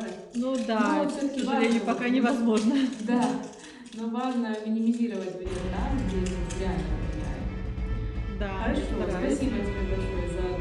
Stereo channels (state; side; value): identical; both; correlation 1.00